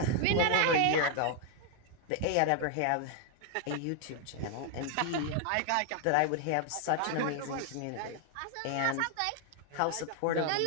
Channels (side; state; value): both; different; correlation 0.00